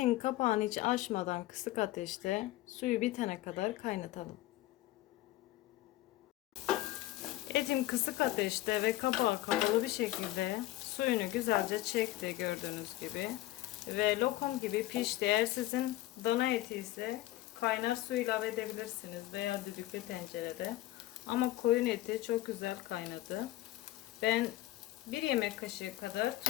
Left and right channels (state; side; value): quieter; right; 16.2 dB